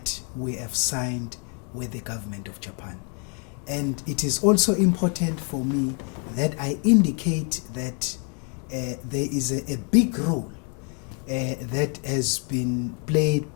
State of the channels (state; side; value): quieter; right; 38.4 dB